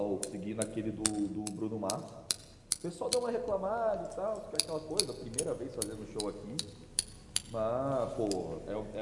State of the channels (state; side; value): identical; both; correlation 1.00